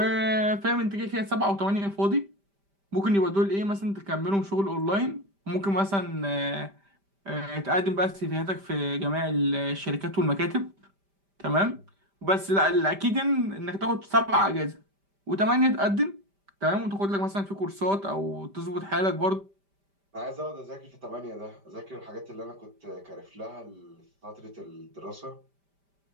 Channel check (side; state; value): left; late; 5.1 ms